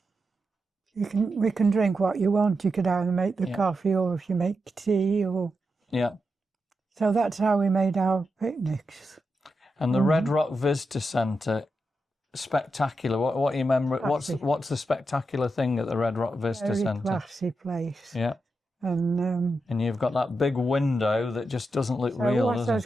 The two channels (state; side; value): normal; both; correlation 0.87